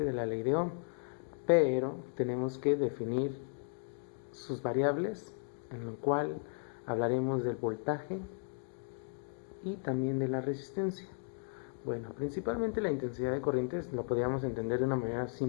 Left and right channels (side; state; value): right; silent; 54 dB below the other